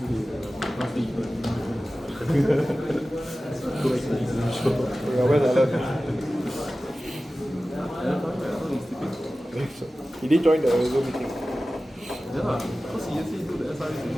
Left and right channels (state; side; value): normal; both; correlation 0.96